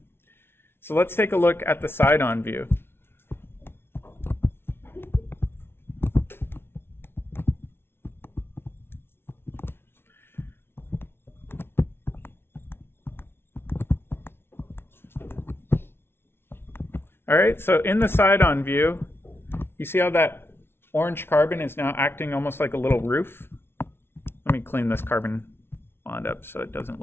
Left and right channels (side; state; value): right; late; 0.12 ms